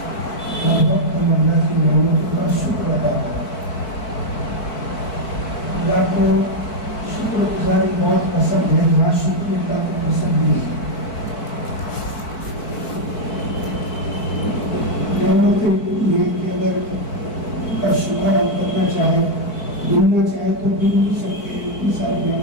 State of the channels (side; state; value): right; late; 4.6 ms